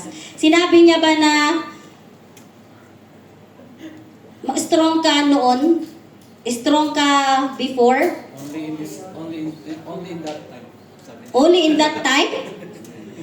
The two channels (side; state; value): both; identical; correlation 1.00